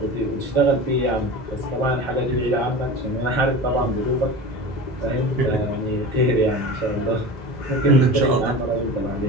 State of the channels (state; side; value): normal; both; correlation 0.32